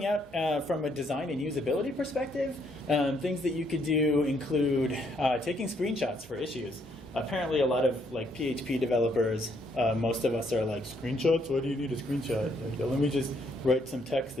out from a design and usability perspective, things that you could do include taking screenshots for issues. Apparently a lot of PHP developers, most of us are screenshots? Why do you need a screenshot? Let me just write some text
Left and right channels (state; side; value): normal; both; correlation 0.71